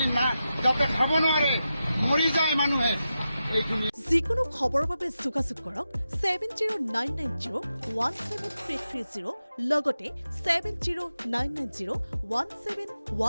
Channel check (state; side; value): inverted; both; correlation -0.90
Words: না যাতে খাব নোৱাৰে, মৰি যায় মানুহে। এইখিনি যিকোনো খবৰৰ বাবে যোগাযোগ কৰক 7099017330 লগতে